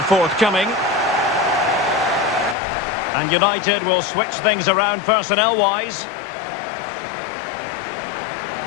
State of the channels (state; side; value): drops out; right; at 2.6 s